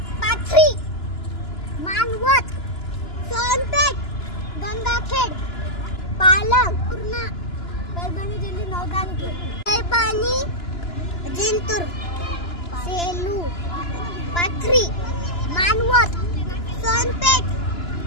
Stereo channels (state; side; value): late; right; 2.9 ms